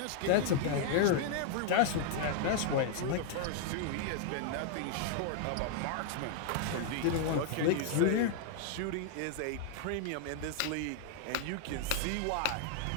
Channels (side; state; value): both; different; correlation -0.01